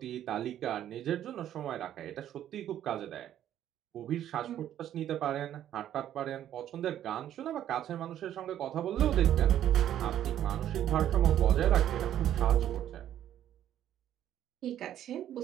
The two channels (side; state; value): left; quieter; 11.2 dB